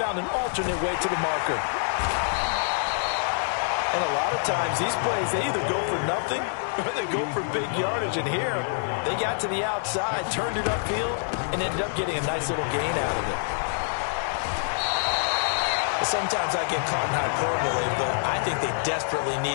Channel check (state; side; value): silent; right; digital silence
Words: an alternate way to the marker. And a lot of times, these plays, they either go for nothing or they go for big yardage. And here, they got to the outside, turned it upfield, and ended up getting a nice little gain out of it. Sometimes I get caught in hyperbole, but I think they desperately